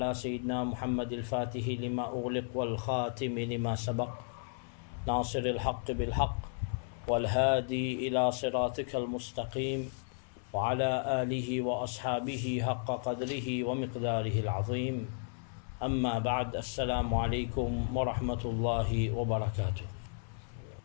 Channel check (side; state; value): right; silent; 55 dB below the other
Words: سيدنا محمد الفاتح لما أغلق والخاتم لما سبق ناصر الحق بالحق والهادي إلى صراطك المستقيم وعلى آله وأصحابه حق قدره ومقداره العظيم أما بعد السلام عليكم ورحمة الله وبركاته.